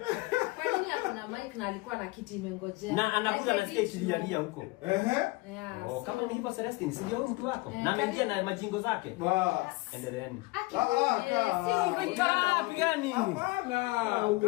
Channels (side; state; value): right; quieter; 23.6 dB